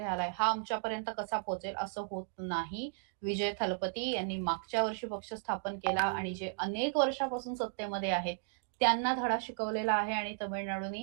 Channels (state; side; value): silent; left; digital silence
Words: आलाय, हा आमच्यापर्यंत कसा पोहोचेल असं होत नाही. विजय थलपती यांनी मागच्या वर्षी पक्ष स्थापन केला आणि जे अनेक वर्षापासून सत्तेमध्ये आहेत, त्यांना धडा शिकवलेला आहे आणि